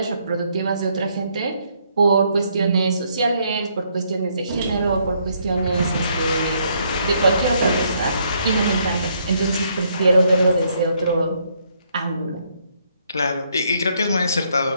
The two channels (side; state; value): both; inverted; correlation -0.71